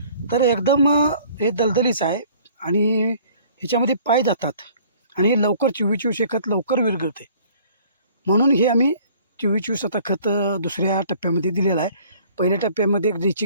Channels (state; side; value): inverted; both; correlation -0.54